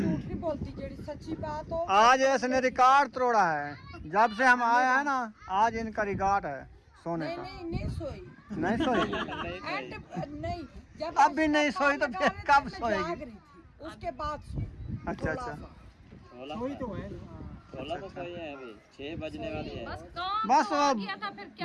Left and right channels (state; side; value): identical; both; correlation 1.00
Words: नहीं बोलती, जेड़ी सच्ची बात हो। आज इसने रिकॉर्ड तोड़ा है। जब से हम आए हैं ना, आज इनका रिकॉर्ड है सोने नहीं का। नहीं नहीं सोई। नहीं सोई? एंड नहीं, जब अब भी नहीं सोई तो फिर कब मैं सोएगी? जाग रही थी, उसके बाद सोई। अच्छा अच्छा। वही तो है। बस काम बस तो आ गया था, फिर